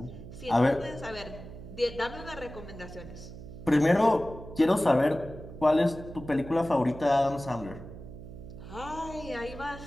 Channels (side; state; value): right; noise; hum, 13 dB below the sound